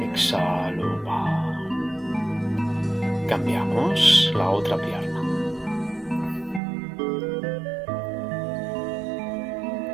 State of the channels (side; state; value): left; drops out; at 6.6 s